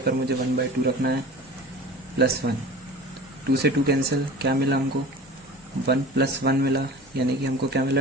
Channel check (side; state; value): both; normal; correlation 0.39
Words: पर मुझे 1 बाई 2 रखना है प्लस 1, 2 से 2 कैंसिल, क्या मिला हमको 1 प्लस 1 मिला, यानी कि हमको क्या